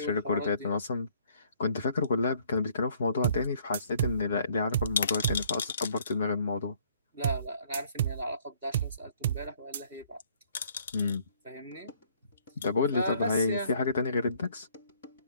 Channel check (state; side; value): inverted; both; correlation -0.61